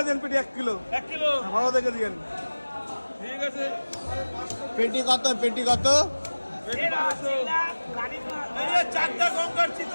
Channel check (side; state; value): both; inverted; correlation -1.00